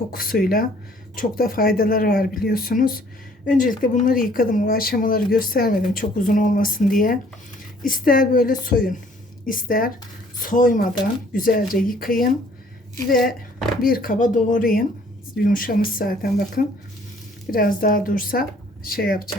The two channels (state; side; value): normal; both; correlation 0.59